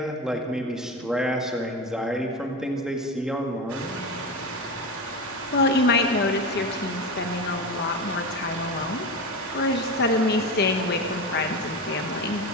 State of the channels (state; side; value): normal; both; correlation 0.21